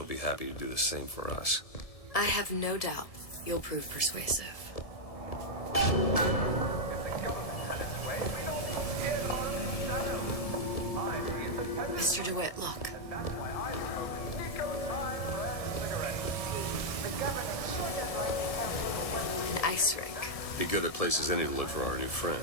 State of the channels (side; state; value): right; late; 1.7 ms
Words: be happy to do the same for us. I have no doubt you'll prove persuasive. Mr. DeWitt, look. An ice rink. Be good at places any to look for our new friend.